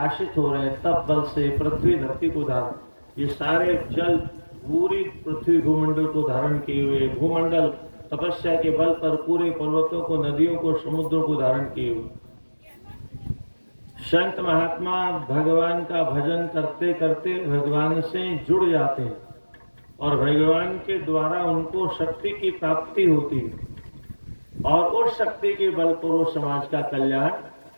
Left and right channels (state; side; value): inverted; both; correlation -1.00